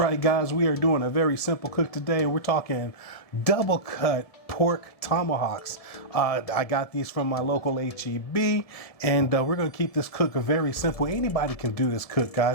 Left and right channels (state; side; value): late; right; 1.7 ms